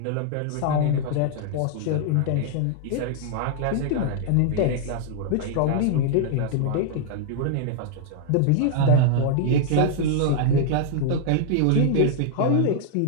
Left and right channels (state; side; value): different; both; correlation -0.01